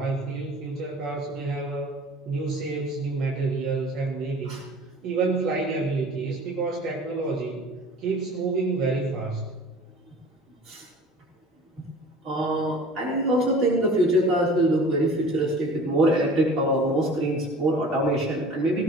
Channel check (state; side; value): normal; both; correlation 0.44